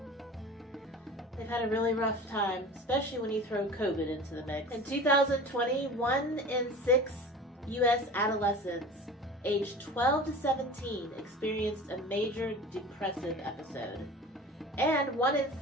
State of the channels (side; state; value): both; normal; correlation 0.38